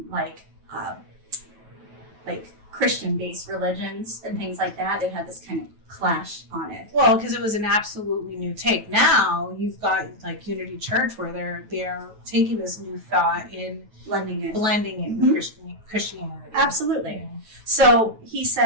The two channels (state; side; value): late; left; 9.2 ms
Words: like Christian-based religions and things like that. It had this kind of clash on it. Well, because it was an absolutely new take. Now you've got like Unity Church where they're taking this new thought and blending it with Christianity. Absolutely. Yeah. So he